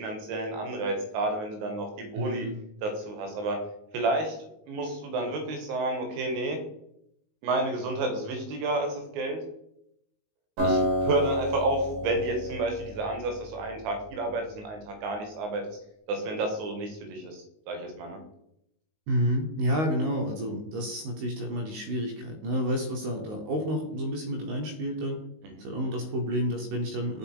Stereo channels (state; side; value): late; left; 19 ms